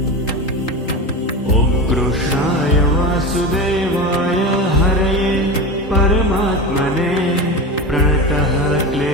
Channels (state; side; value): normal; both; correlation 0.25